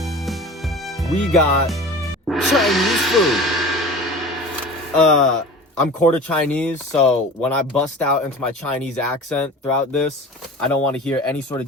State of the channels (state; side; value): normal; both; correlation 0.37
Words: We got Chinese food. I'm quarter Chinese, so when I bust out into my Chinese accent throughout this, I don't want to hear any sort of